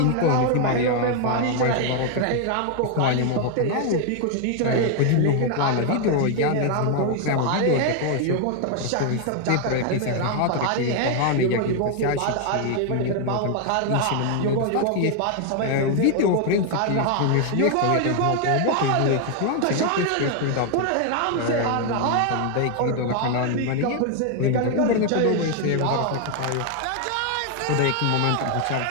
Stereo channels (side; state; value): both; different; correlation 0.00